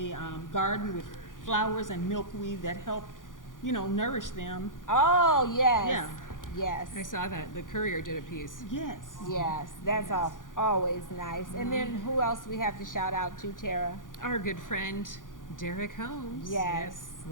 garden with flowers and milkweed that help, nourish them. Oh, yes. Yeah. Yes. I saw that, the Courier did a piece. Yes. Yes, that's always nice. And then who else we have to shout out to, Tara? Our good friend, Derek Holmes. Yes.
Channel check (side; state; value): right; late; 0.88 ms